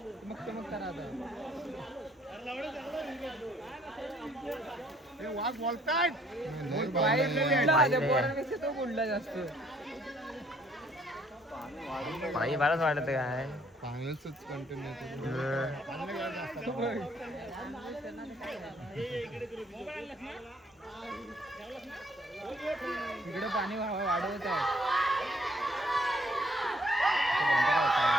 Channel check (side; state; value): both; normal; correlation 0.64